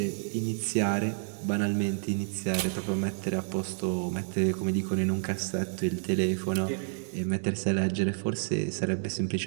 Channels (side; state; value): left; silent; digital silence